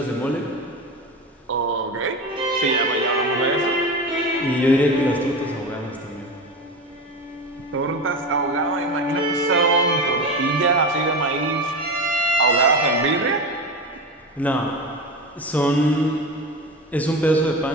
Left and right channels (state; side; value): normal; both; correlation 0.24